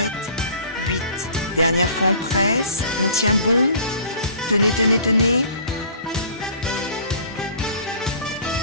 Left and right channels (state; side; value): inverted; both; correlation -0.48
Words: 8. Dernière fois on presse, on tient bon. Tenez, tenez, tenez.